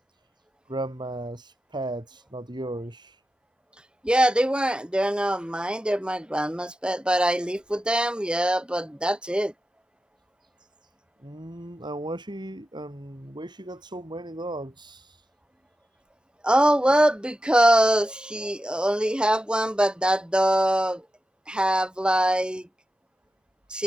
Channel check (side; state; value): both; normal; correlation 0.91